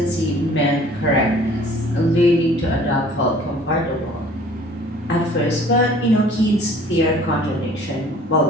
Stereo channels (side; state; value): both; normal; correlation 0.52